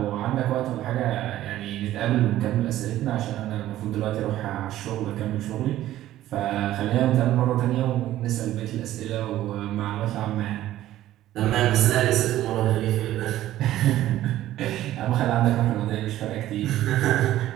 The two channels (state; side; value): quieter; left; 13.9 dB